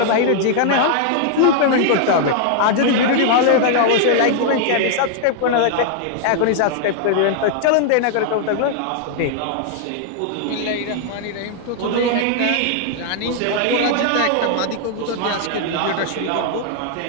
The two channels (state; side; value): different; both; correlation 0.00